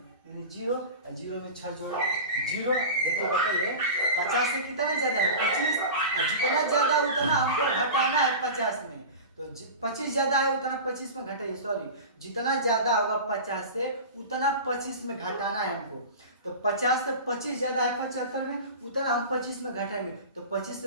0, और 0 में 6 जोड़ा 0। देखिए बताइए 50 से कितना ज्यादा है 25, और जितना ज्यादा उतना हमको घटाना है 50 में, तो 25 ज्यादा है उतना 25 में घटाइए, सॉरी जितना ज्यादा होगा 50 से उतना 25 में घटाना है हमको। तो 50 से 25 ज्यादा है 75 में, उतना हम 25 में घटाएंगे तो 25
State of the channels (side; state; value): both; inverted; correlation -0.31